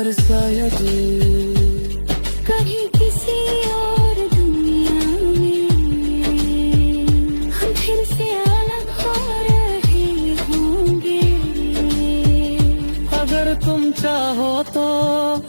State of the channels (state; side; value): inverted; both; correlation -1.00